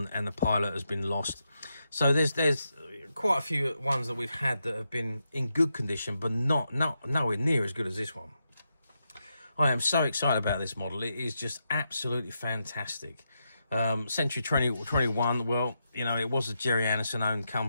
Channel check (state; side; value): inverted; both; correlation -0.84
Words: and the pilot has been lost. So there's quite a few ones that we've had that have been in good condition, but nowhere near as good as this one. I am so excited about this model. It is just absolutely fantastic. Century 2021, well, you know, it was a Gerry owned